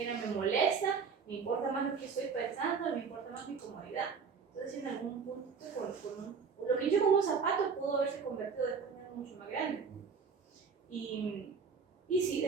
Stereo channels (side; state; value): left; quieter; 5.7 dB